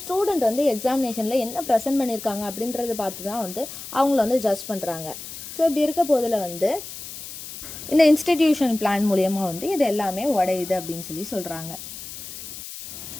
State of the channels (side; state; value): left; noise; hiss, 11 dB below the sound